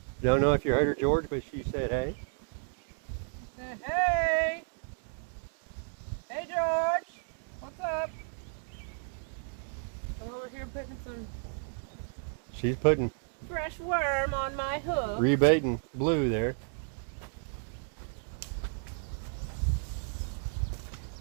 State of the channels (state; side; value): silent; left; 56 dB below the other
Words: Don't know if you heard her, George, but she said hey. He said, hey! Hey, George! What's up? We're over here putting some She's putting fresh worm on my hook. rebaiting blue there.